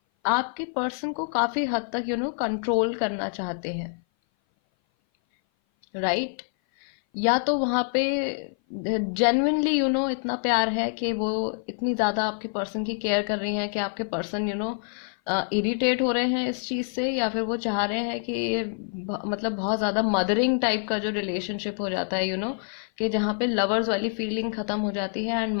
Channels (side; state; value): right; silent; 57 dB below the other